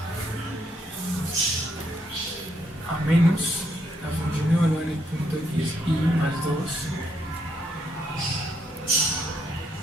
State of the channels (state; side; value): normal; both; correlation 0.75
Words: a menos la función evaluada en el punto x y más 2